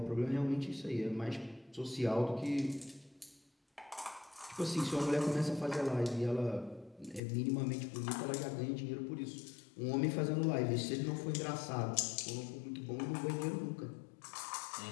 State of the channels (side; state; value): right; drops out; at 7.2 s